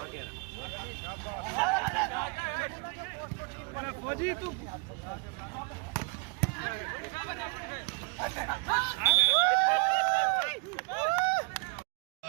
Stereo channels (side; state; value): left; quieter; 34.1 dB